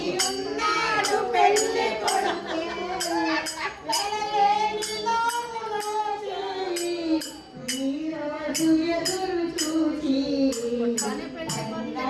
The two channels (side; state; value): both; identical; correlation 1.00